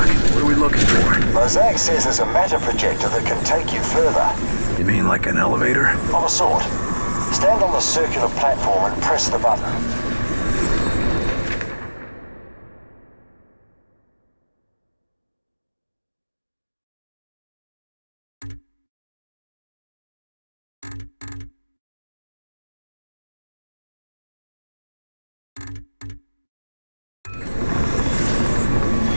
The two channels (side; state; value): both; inverted; correlation -1.00